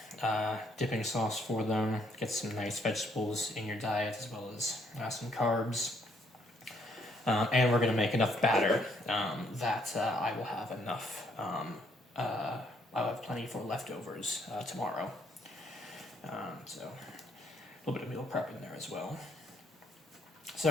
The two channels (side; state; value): both; normal; correlation 0.70